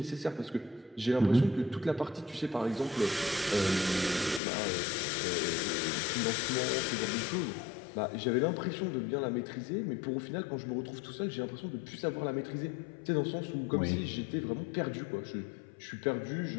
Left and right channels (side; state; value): right; drops out; at 4.4 s